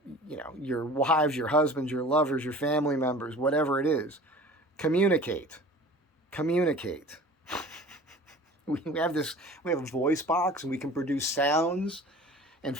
your wives, your husbands, your lovers, your family members, whatever it is. Communicate. Communicate. We have a voice box and we can produce sounds and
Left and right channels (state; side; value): normal; both; correlation 0.43